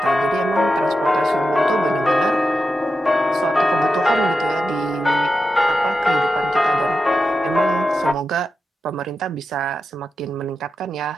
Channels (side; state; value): both; normal; correlation 0.89